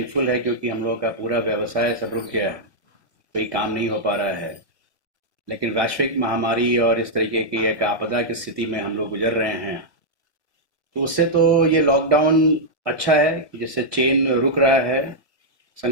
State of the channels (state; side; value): late; left; 1.8 ms